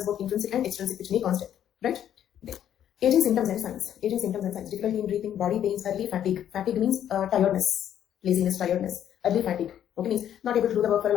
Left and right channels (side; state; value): right; quieter; 10.3 dB